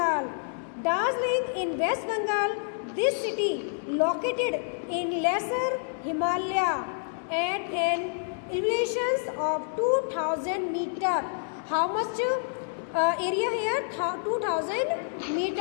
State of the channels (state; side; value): silent; right; digital silence